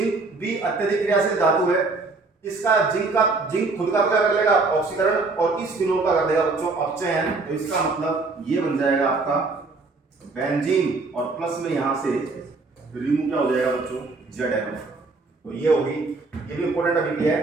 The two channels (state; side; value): quieter; left; 3.7 dB